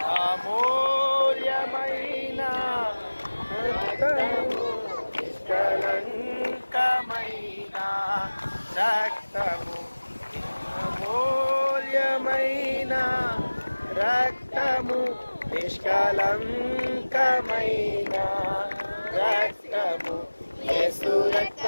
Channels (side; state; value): both; inverted; correlation -1.00